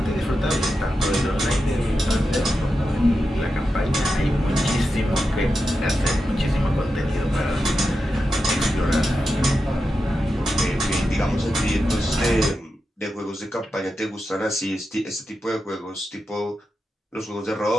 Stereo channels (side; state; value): both; normal; correlation 0.89